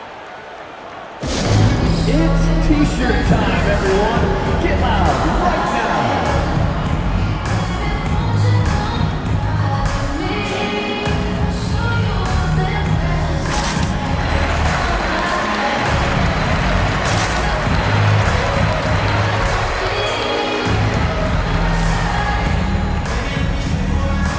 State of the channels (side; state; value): both; identical; correlation 1.00